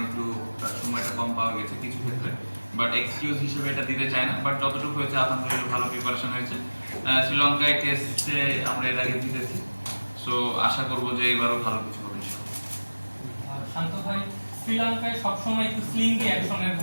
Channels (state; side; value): inverted; both; correlation -1.00